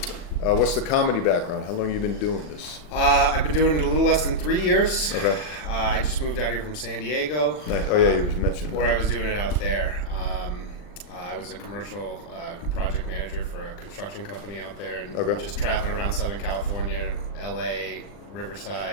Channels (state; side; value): late; right; 40 ms